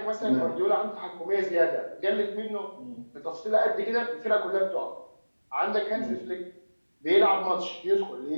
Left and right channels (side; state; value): both; inverted; correlation -1.00